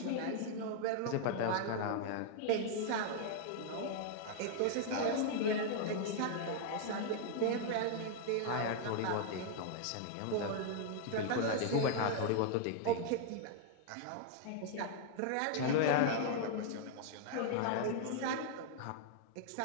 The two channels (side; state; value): both; different; correlation 0.00